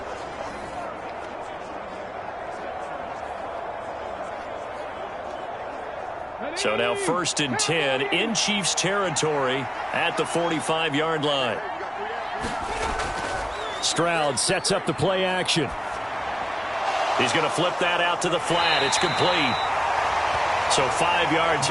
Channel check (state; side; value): identical; both; correlation 1.00